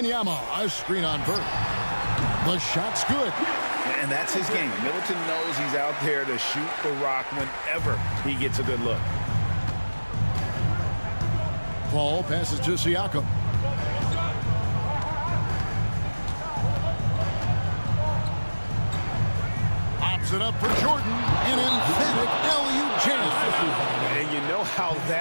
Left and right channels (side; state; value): both; inverted; correlation -1.00